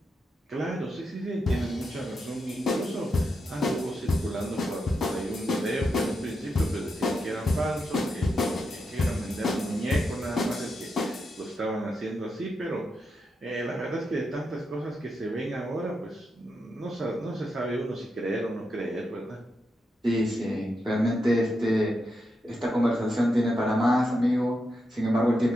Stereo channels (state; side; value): normal; both; correlation 0.85